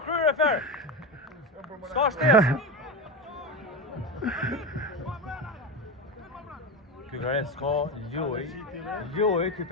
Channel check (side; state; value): both; normal; correlation 0.19